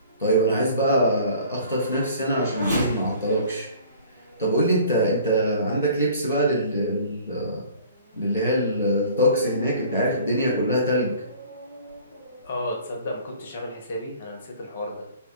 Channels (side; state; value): both; inverted; correlation -0.49